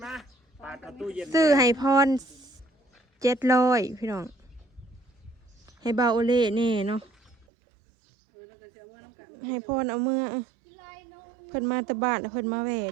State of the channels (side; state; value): left; drops out; at 7.5 s